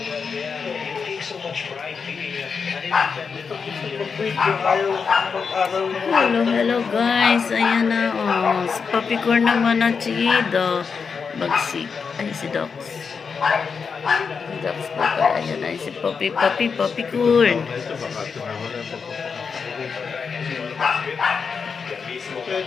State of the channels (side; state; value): right; quieter; 5.7 dB